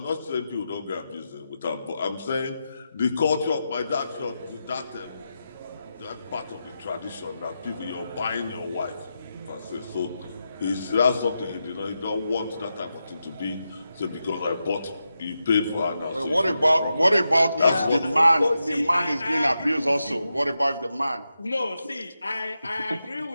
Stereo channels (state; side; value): inverted; both; correlation -0.88